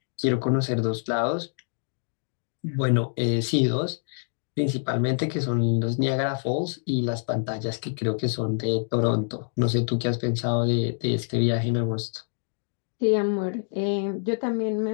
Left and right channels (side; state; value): right; silent; digital silence